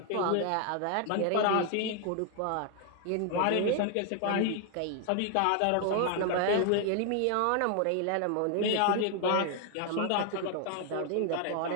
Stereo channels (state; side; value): different; both; correlation 0.00